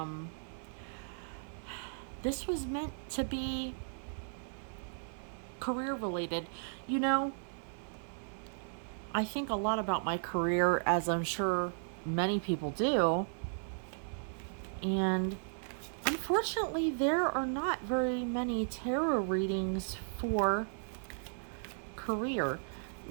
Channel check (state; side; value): silent; left; digital silence